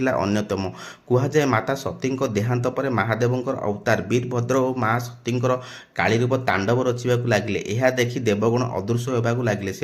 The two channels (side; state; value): both; identical; correlation 1.00